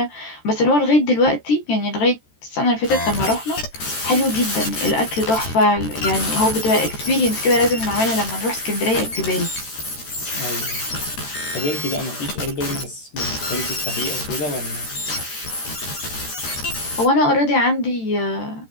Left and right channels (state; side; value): late; right; 13 ms